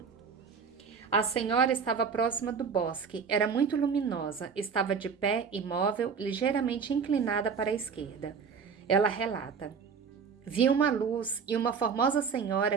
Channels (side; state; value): left; quieter; 5.9 dB